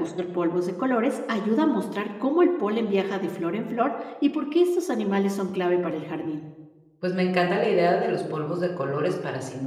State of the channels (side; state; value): both; identical; correlation 1.00